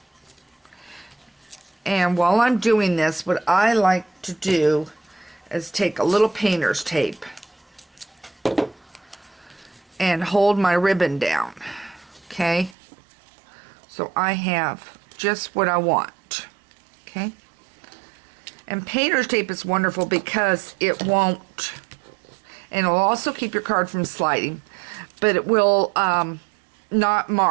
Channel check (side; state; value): left; drops out; at 12.8 s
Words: And while I'm doing this, what I like to do is take a little painter's tape and hold my ribbon down. Okay. So I have just what I want. Okay. And painter's tape is wonderful because it won't, and it'll also keep your card from sliding, but it will not